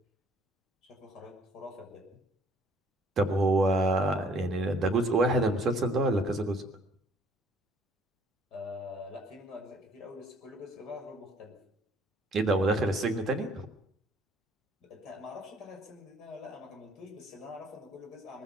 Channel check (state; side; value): normal; both; correlation 0.60